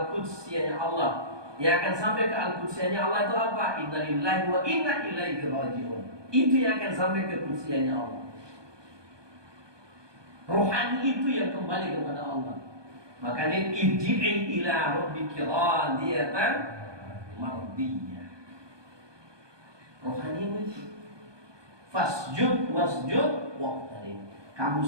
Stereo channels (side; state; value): left; late; 1.2 ms